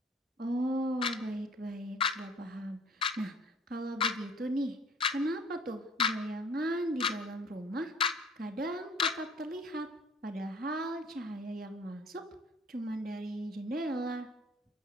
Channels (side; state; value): both; normal; correlation 0.52